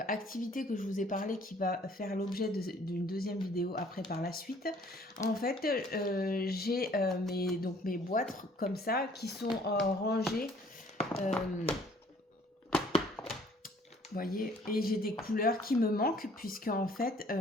que je vous ai parlé qui va faire l'objet d'une deuxième vidéo après par la suite. En fait, j'ai mes boîtes comme ça qui sont rangées. Vous voyez, et j'ai des couleurs qui me manquent puisque en fait,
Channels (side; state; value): both; normal; correlation 0.57